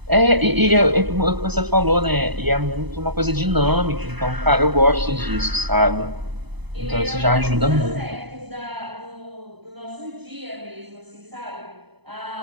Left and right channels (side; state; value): left; late; 0.99 ms